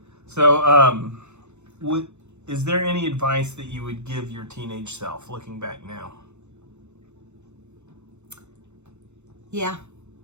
So, is there any advice that you would give your teenage self, looking back now? Yeah.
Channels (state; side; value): late; left; 0.82 ms